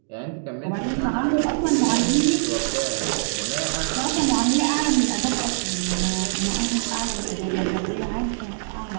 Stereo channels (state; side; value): silent; left; digital silence